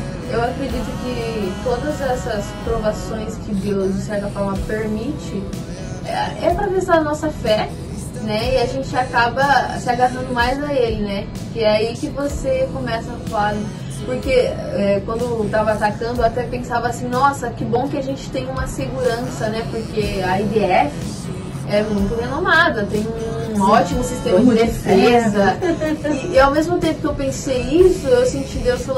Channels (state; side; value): identical; both; correlation 1.00